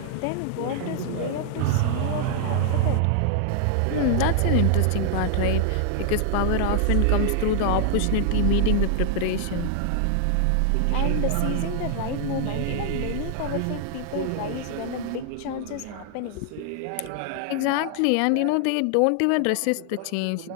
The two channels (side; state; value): both; different; correlation 0.00